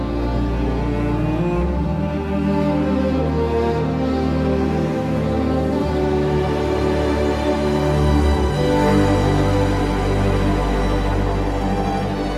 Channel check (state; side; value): identical; both; correlation 1.00